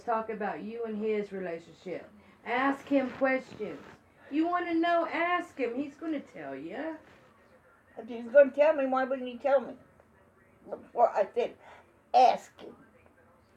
talk about you and his relationship. Ask him questions. You want to know, ask him. He's going to tell you. If he's going to tell me, why wouldn't he tell me? Before I said, ask him.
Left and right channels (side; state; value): both; identical; correlation 1.00